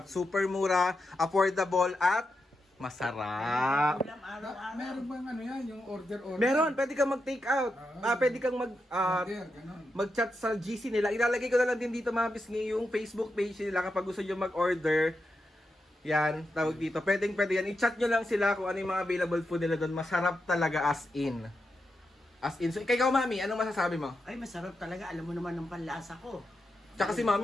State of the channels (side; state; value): both; normal; correlation 0.87